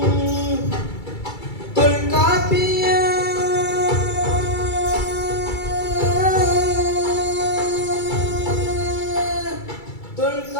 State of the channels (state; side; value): late; right; 2.3 ms